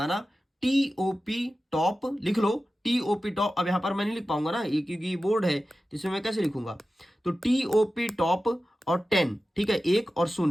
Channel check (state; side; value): normal; both; correlation 0.94